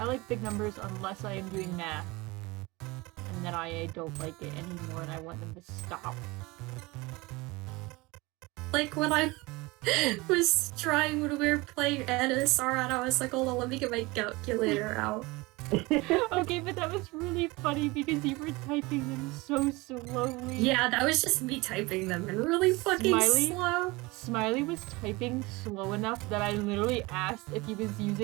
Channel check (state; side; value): quieter; left; 23.2 dB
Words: like big numbers unless I am doing math. And then I don't like it anymore and I want them to stop. Like when I was trying when we were playing NSR and I was like, hold on, let me get my calculator out. Okay, but that was really funny because you were typing them so slowly. Yeah, that was just me typing them and really fucking slow. Smiley was typing slow enough that I literally asked if he was